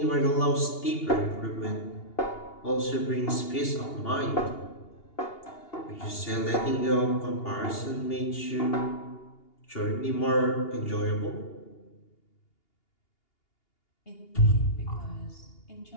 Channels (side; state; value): right; late; 2.8 ms